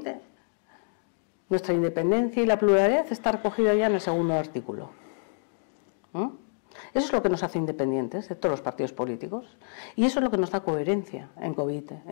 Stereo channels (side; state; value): right; silent; digital silence